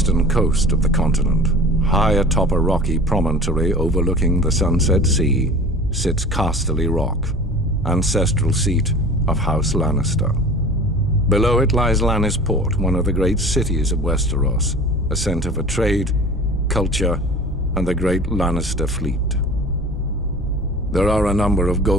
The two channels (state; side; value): normal; both; correlation 0.40